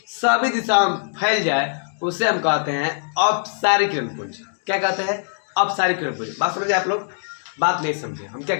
सभी दिशाओं में फैल जाए, उसे हम कहते हैं अपसारी किरण पुंज। क्या कहते हैं? अपसारी किरण पुंज। बात समझिए आप लोग, बात नहीं समझे। हम क्या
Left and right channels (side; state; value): right; silent; digital silence